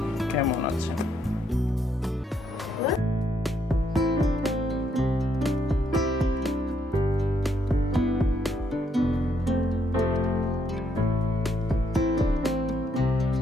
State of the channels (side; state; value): both; normal; correlation 0.74